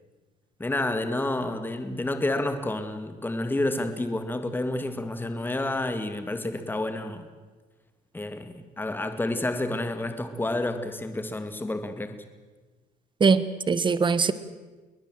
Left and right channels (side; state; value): both; normal; correlation 0.77